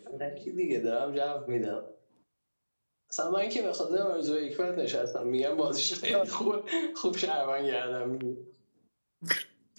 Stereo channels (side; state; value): both; inverted; correlation -1.00